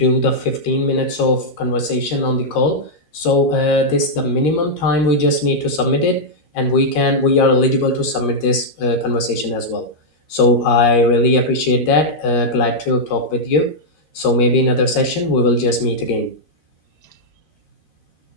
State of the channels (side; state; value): right; late; 13 ms